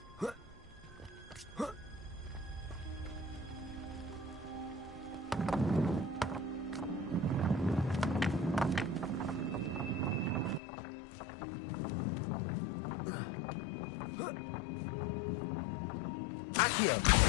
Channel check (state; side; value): drops out; right; at 10.6 s